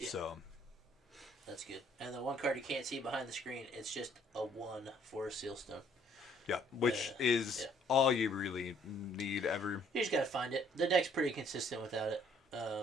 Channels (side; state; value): both; normal; correlation 0.63